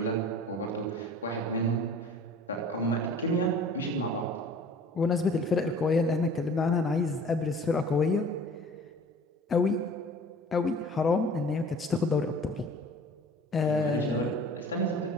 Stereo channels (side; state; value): both; normal; correlation 0.46